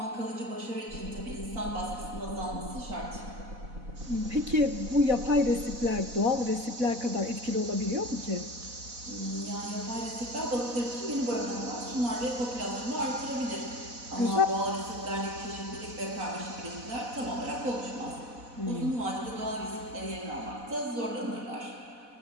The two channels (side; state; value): left; late; 4.1 ms